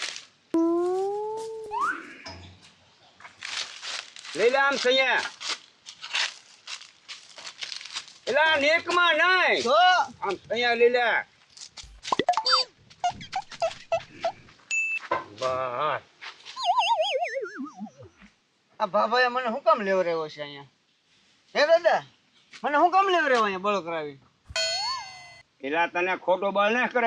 લઈ લે આમ સૈયા એલા નેકમાં નહીં તો આમ સૈયા લઈ લે બસ આ ભાભાએ મને શું કામ લેવડાવ્યો છે અહીંયા હે દાદા મને શું કામ લેવડાવ્યો અહીંયા બળો કરાવી એલા તને ખોટો બળ ન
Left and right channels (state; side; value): identical; both; correlation 1.00